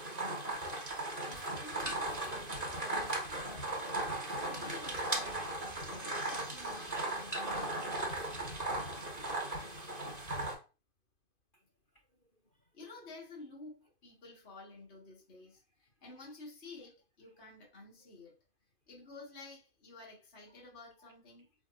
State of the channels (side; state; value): right; late; 2.5 ms